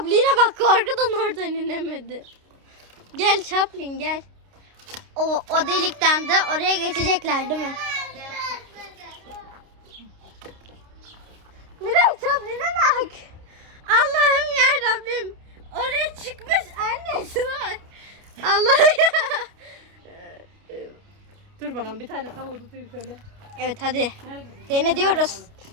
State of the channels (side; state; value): left; late; 29 ms